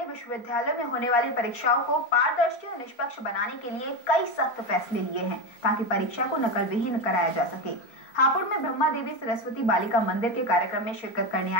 विश्वविद्यालय में होने वाली परीक्षाओं को पारदर्शी और निष्पक्ष बनाने के लिए कई सख्त फैसले लिए हैं ताकि परीक्षा को नकल विहीन कराया जा सके। हापुड़ में ब्रह्मा देवी सरस्वती बालिका मंदिर के कार्यक्रम में शिरकत करने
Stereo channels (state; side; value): late; right; 4.3 ms